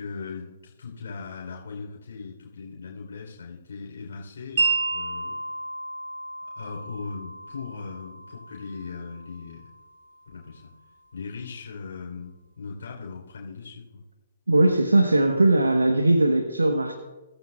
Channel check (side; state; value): both; inverted; correlation -0.90